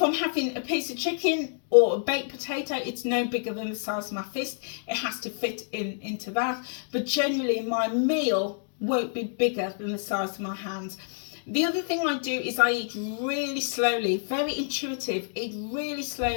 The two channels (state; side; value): silent; right; digital silence